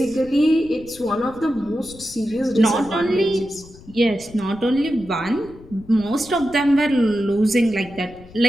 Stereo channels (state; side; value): noise; left; rumble, 20 dB below the sound